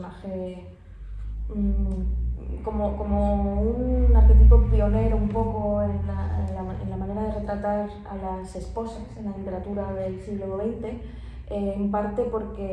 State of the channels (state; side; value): identical; both; correlation 1.00